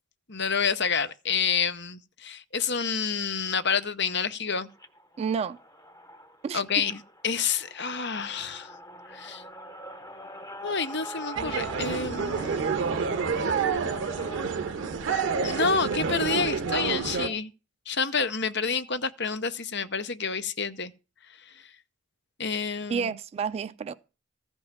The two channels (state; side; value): normal; both; correlation -0.08